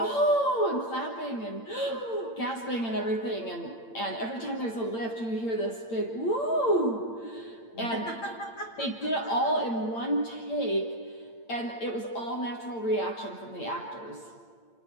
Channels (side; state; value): right; late; 8.8 ms